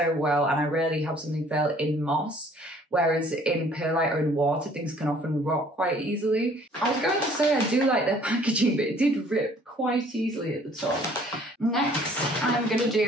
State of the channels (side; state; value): both; normal; correlation 0.57